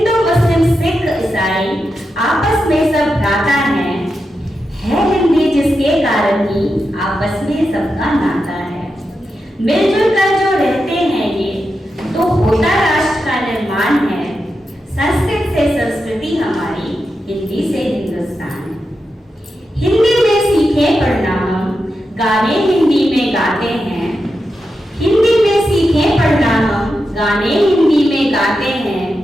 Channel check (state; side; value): normal; both; correlation 0.88